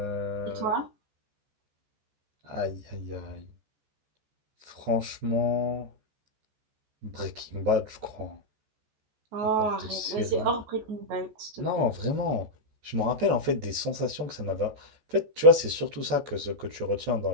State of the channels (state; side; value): late; left; 14 ms